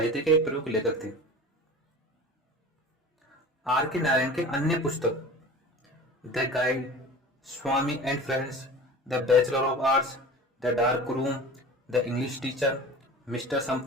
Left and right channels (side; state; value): both; normal; correlation 0.37